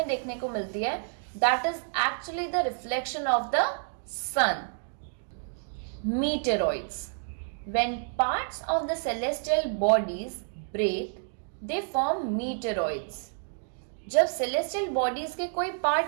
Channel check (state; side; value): silent; left; digital silence